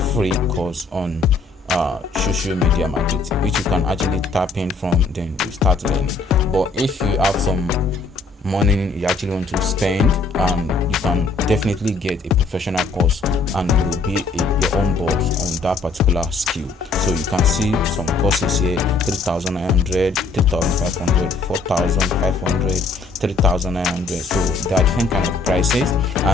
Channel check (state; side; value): quieter; right; 3.9 dB